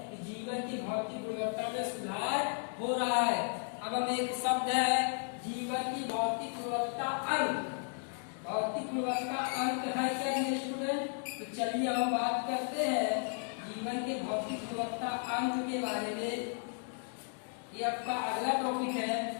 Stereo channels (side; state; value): right; silent; 55 dB below the other